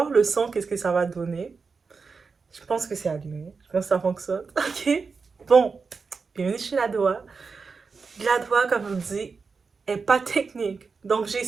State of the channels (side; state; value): left; quieter; 4.9 dB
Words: le son, qu'est-ce que ça va donner. Je pense que c'est allumé. Je pense que ça fonctionne. Ok? Bon, bienvenue chez la Doha. La Doha, comme je vous dis, est pas technique. Donc,